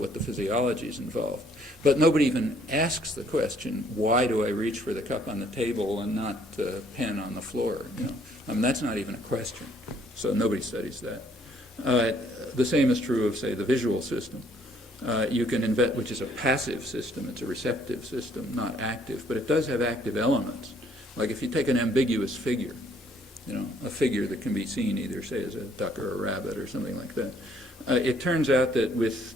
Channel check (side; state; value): both; normal; correlation 0.64